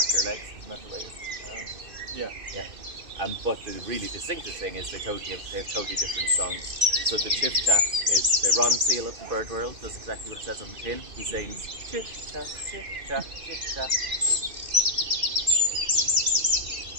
legs, isn't that the way it's Yeah. Yeah. But the really distinctive thing is they have totally different songs. So the chiff-chaff is the Ron Seal of the bird world, does exactly what it says on the tin. He sings chiff-chaff, chiff-chaff, chiff-chaff.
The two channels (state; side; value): late; left; 2.6 ms